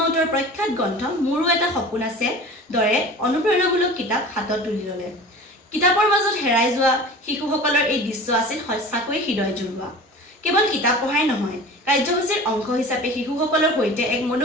প্ৰখ্যাত গ্ৰন্থ মোৰো এটা সপোন আছে দৰে অনুপ্ৰেৰণামূলক কিতাপ হাতত তুলি ল'লে কিতাপৰ মাজত হেৰাই যোৱা শিশুসকলৰ এই দৃশ্য আছিল সঁচাকৈ হৃদয় জুৰুৱা কেৱল কিতাপ পঢ়াই নহয় কাৰ্যসূচীৰ অংশ হিচাপে শিশুসকলৰ সৈতে এক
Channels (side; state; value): both; normal; correlation 0.39